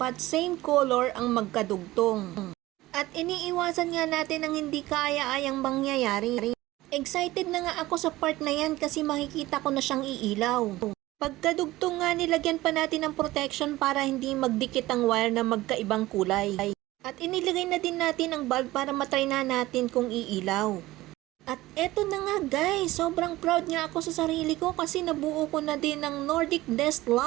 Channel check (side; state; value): left; quieter; 17.8 dB